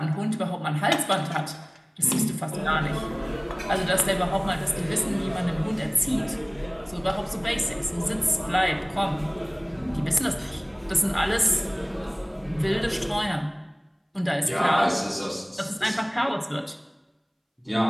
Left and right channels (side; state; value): both; identical; correlation 1.00